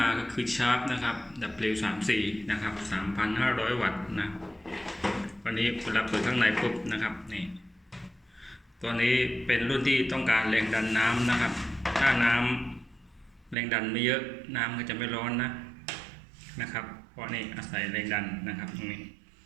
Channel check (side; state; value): left; drops out; at 13.6 s